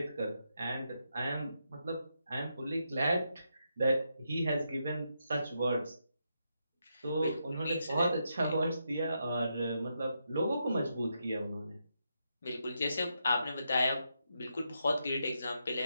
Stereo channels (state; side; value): inverted; both; correlation -0.82